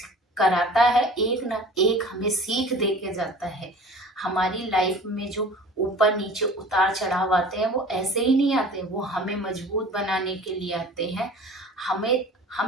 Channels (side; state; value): both; normal; correlation 0.43